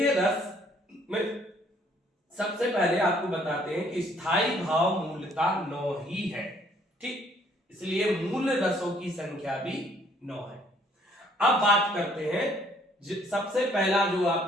रस में सबसे पहले आपको बताते हैं कि स्थायी भाव मूलतः 9 ही है, ठीक, इसलिए मूल रसों की संख्या भी 9 है। अब बात करते हैं सबसे पहला जो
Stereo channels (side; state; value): both; normal; correlation 0.63